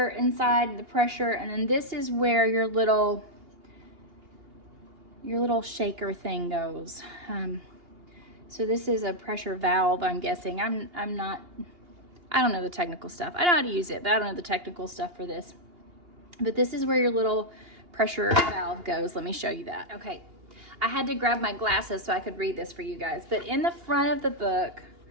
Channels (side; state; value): left; late; 2.8 ms